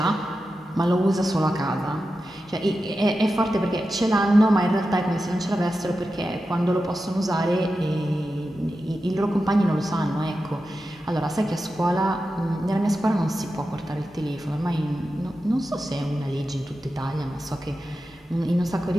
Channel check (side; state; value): both; normal; correlation 0.91